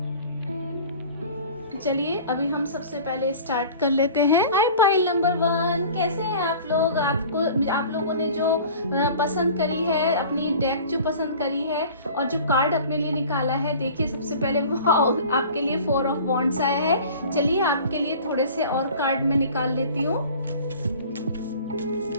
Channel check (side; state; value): both; inverted; correlation -0.43